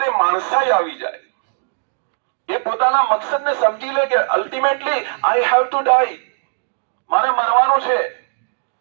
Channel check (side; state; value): left; silent; digital silence